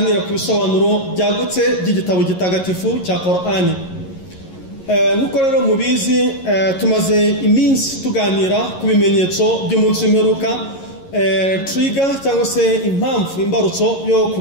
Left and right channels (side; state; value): right; late; 11 ms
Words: ku bisobanuro byagutse by'igitabo gitagatifu cya Qur'ani. Nk'uko rero mubizi, tumaze iminsi tuganira ku bimenyetso by'umunsi w'imperuka. Trigger cyangwa se impamvu imbarutso yo